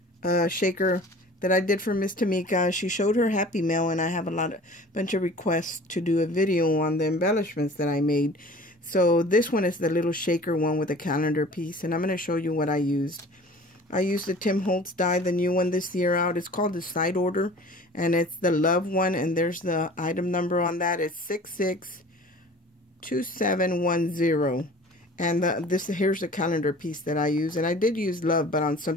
a shaker that I did for Miss Tmika. She showed her Happy Mail, and I have bunch of requests to do a video on the embellishments that I made. So this one is the little shaker one with a calendar piece, and I'm going to show you what I used. I used the Tim Holtz die, the new one this year out. It's called the Side Order, and it's the Love one, and there's the item number on that. It's 662710. And here's the calendar piece that I use. And I did use love, but on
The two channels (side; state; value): both; normal; correlation 0.44